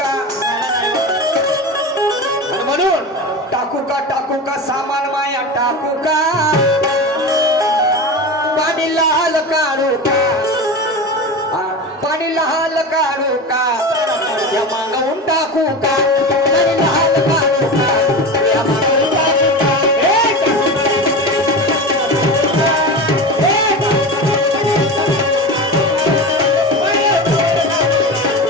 आणि म्हणून टाकू का सामान माया टाकू का. पाणी लाल काढू का. पाणी लाल काढू का या मागवून टाकू का. पाणी लाल काढू का या मागवून टाकू का.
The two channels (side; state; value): both; normal; correlation 0.26